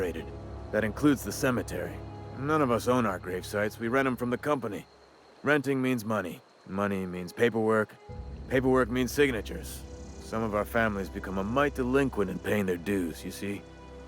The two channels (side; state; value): both; identical; correlation 1.00